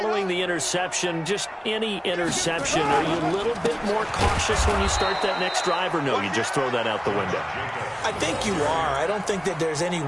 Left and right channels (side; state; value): both; identical; correlation 1.00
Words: the interception, just any interception, are you a little bit more cautious when you start that next drive, or no, you just throw that out the window? I think you are. I don't think that there's any